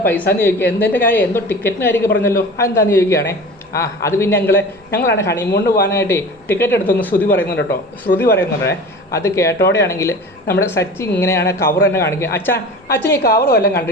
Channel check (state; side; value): normal; both; correlation 0.37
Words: പൈസ എന്ന് ചോദിക്കുക. എന്തിൻ്റെ കാര്യം, എന്തോ ടിക്കറ്റിന് കാര്യമൊക്കെ പറഞ്ഞല്ലോ, അതെന്താണെന്ന് ചോദിക്കുകയാണേ. അത് പിന്നെ ഞങ്ങളാണ് ഹണിമൂണിന് പോകാനായിട്ട് ടിക്കറ്റ് എടുത്തൊന്ന് ശ്രുതി പറയുന്നുണ്ട്. അത് കേട്ടോടെയാണെങ്കിൽ നമ്മുടെ സച്ചി ഇങ്ങനെയാണ് കവർ തന്നെ കാണിക്കുക. അച്ഛൻ ഈ കവർ വല്ലതും